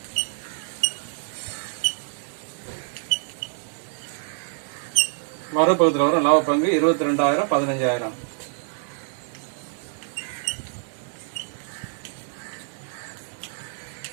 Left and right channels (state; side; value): silent; left; 61 dB below the other